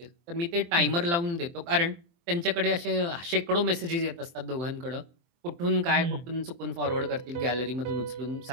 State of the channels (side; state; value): left; late; 23 ms